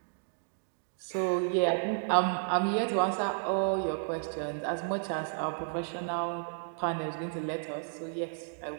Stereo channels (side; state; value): left; silent; digital silence